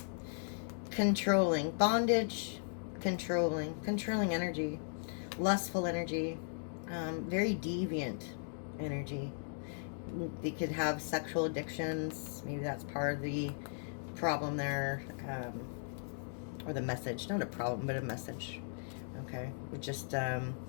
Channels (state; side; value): silent; right; digital silence